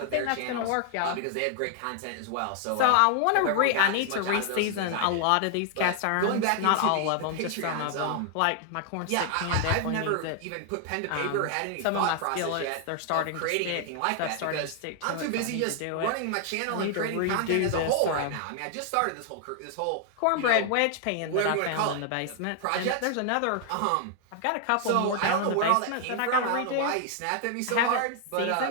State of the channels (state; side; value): different; both; correlation 0.00